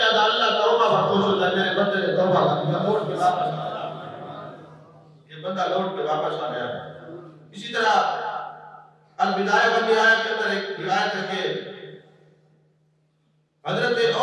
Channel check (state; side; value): identical; both; correlation 1.00